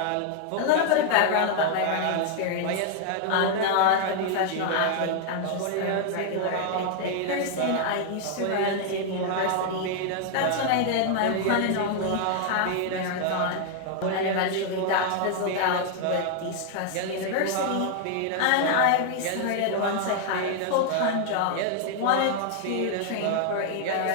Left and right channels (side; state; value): both; different; correlation 0.00